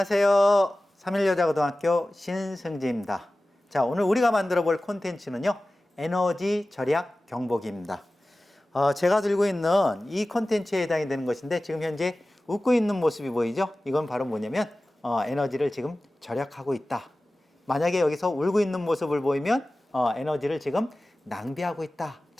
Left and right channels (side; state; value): both; normal; correlation 0.96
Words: 3일여자고등학교 신승지입니다. 자, 오늘 우리가 만들어 볼 콘텐츠는요, 에너지 절약 경보기입니다. 제가 들고 있는 이 콘텐츠에 해당이 되는 것인데, 지금 현재 웃고 있는 모습이 보이죠? 이건 바로 뭐냐면, 에너지를 지금 절약하고 있다. 만약에 여기서 울고 있는 모습을 보이면, 에너지를 지금 낭비하고 있다.